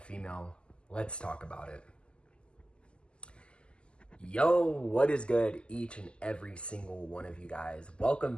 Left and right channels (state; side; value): late; right; 0.051 ms